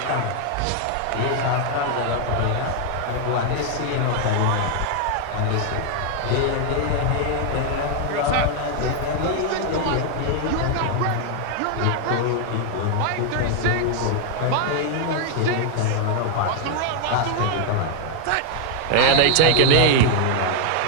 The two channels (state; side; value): different; both; correlation 0.00